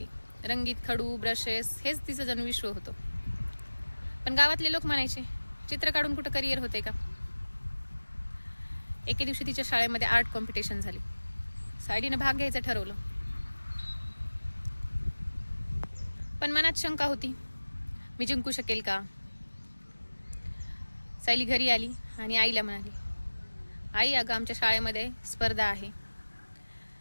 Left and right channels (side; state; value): both; inverted; correlation -1.00